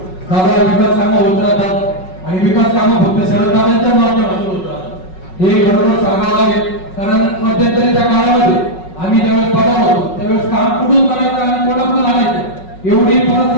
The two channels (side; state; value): right; late; 5.4 ms